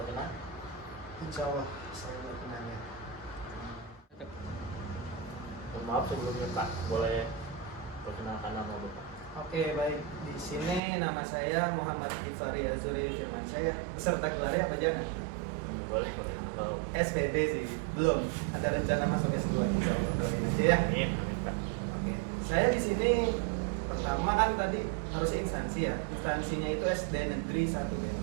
Insya Allah saya berkenannya. Mohon maaf sebelumnya Pak, boleh perkenalkan nama Bapak? Oke, baik. Di sini nama saya Muhammad Gifari Azuri Firmansyah. Beserta gelarnya apa jangan? Boleh. SPT sih, belum. Ada rencana masuk S2 insya Allah. Ya. Amin. Oke. Saya di sini pertama kan tadi harus instansi ya. Instansinya itu SD Negeri 1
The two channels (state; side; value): drops out; left; at 10.8 s